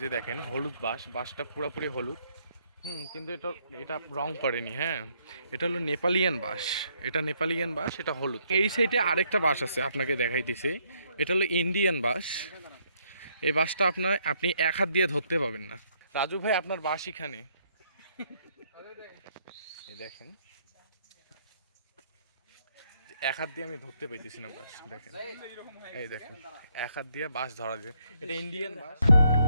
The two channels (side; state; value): both; inverted; correlation -0.71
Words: যে দেখেন হলুদ বাসটা পুরোপুরি হলুদ। কিন্তু এটা রং করেনি। হ্যাঁ, এটা হলো নেপালিয়ান বাস। এটা হলুদ। এই সাইডে আরেকটা বাস আছে, আপনাকে দেখাইতেছি। এটা হলো ইন্ডিয়ান বাস। এই বাসটা আপনি এক হাত দিয়ে ধরতে পাবেন না। রাজু ভাই, আপনার বাস এখানে। এই দেখেন, এক হাত দিয়ে আমি ধরতে পাইতেছি না বাস। দেখেন, এই দেখেন, এক হাত দিয়ে বাস ধরা যায়। এটা ইন্ডিয়ান বাস।